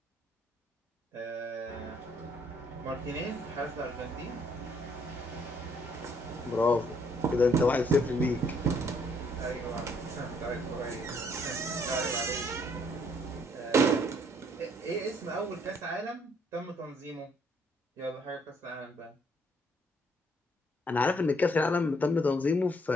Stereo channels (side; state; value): both; normal; correlation 0.67